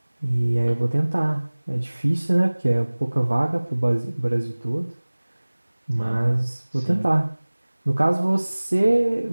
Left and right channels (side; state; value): both; inverted; correlation -1.00